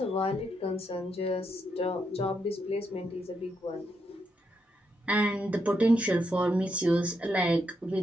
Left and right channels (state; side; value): normal; both; correlation 0.80